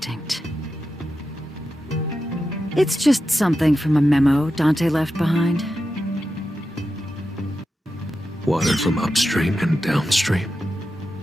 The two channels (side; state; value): both; normal; correlation 0.90